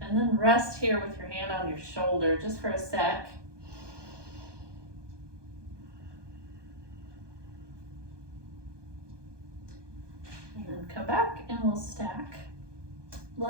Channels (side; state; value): left; late; 1.2 ms